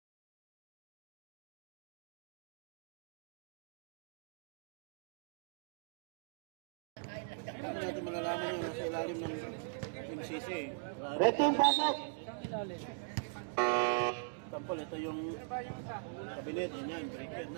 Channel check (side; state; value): left; silent; digital silence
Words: Paano natin malalaman yung nasa ilalim ng MCC? Red team, pasok! Tampol, ito yung kabinet, yun yan, breaker.